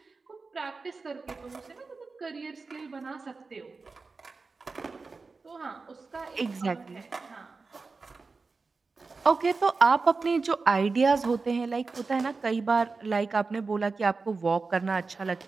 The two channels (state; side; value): quieter; left; 4.2 dB